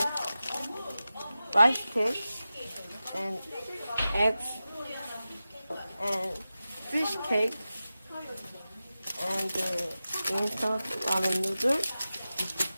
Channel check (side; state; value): both; inverted; correlation -0.94